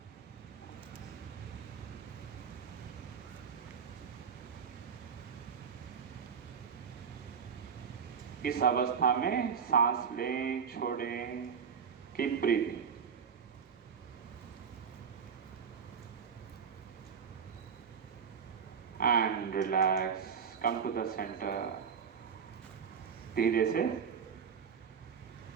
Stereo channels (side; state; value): left; quieter; 6.8 dB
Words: इस अवस्था में सांस लें, छोड़ें, keep breathing. And relax, come to the centre. धीरे से